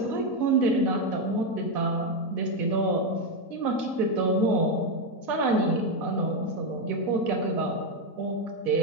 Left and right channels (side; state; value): right; late; 4.0 ms